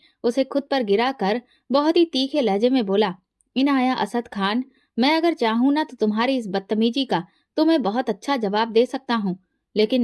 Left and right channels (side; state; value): both; identical; correlation 1.00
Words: उसे खुद पर गिरा कर बहुत ही तीखे लहजे में बोला, इनाया असद खान, मैं अगर चाहूं ना तो तुम्हारी इस बदतमीजी का तुम्हें बहुत अच्छा जवाब दे सकता हूँ,